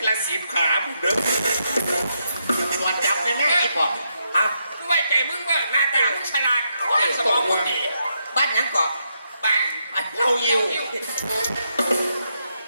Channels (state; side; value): inverted; both; correlation -0.80